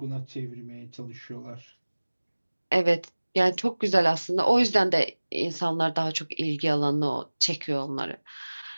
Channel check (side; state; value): both; inverted; correlation -1.00